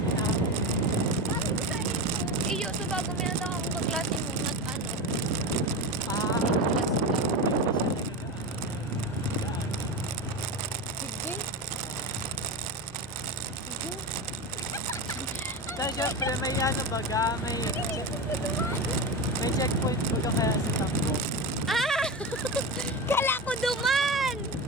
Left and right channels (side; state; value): both; normal; correlation 0.21